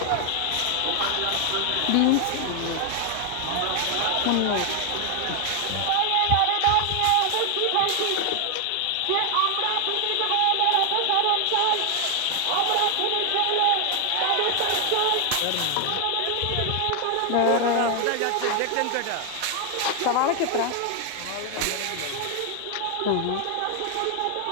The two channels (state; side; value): different; both; correlation 0.00